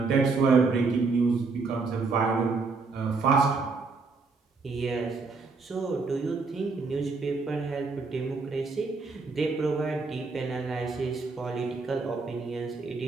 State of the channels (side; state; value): left; quieter; 4.3 dB